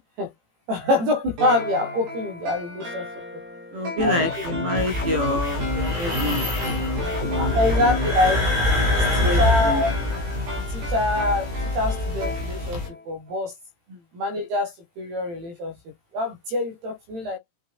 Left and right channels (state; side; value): late; left; 18 ms